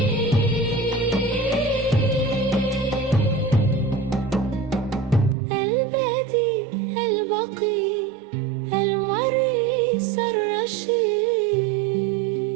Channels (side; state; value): left; drops out; at 5.4 s